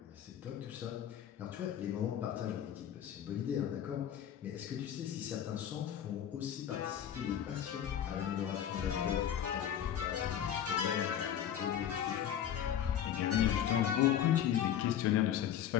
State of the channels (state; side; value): quieter; right; 10.0 dB